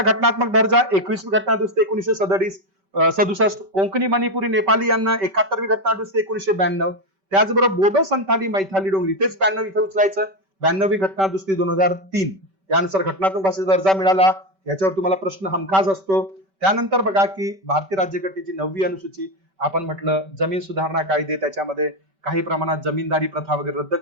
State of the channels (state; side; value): late; left; 5.2 ms